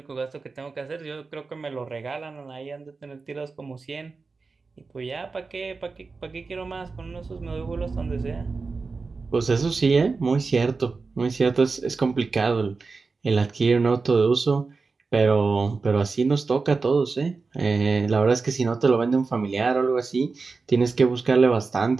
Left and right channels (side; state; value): left; quieter; 4.3 dB